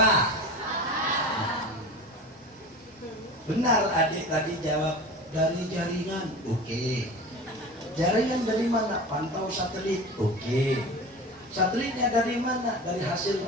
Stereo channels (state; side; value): normal; both; correlation 0.33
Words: Benar adik tadi jawab dari jaringan. Oke. Jaringan dari mana? Pantau satelit. Oke. Satelitnya dari mana? Dari hasil